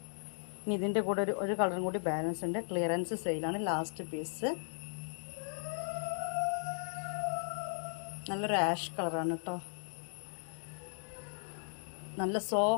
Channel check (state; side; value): silent; right; 53 dB below the other